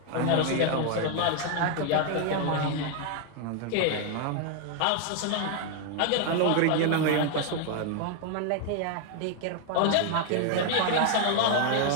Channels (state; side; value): different; both; correlation 0.00